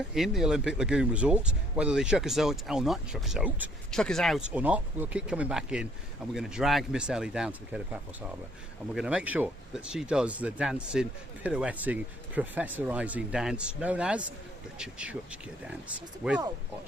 in the Olympic Lagoon Resort. Whether they chuck us out or not, chuck us out or not, we'll keep coming back in, and we're going to drag Miss Ellie down to the Paphos Harbour, and we're going to make sure that she does the dancing, pirouetting, professorising dance known as the Chuchka dance with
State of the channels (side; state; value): both; normal; correlation 0.63